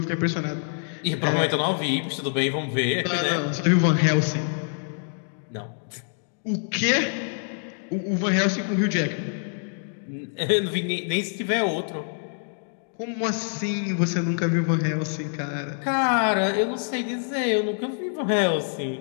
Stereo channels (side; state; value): right; silent; 61 dB below the other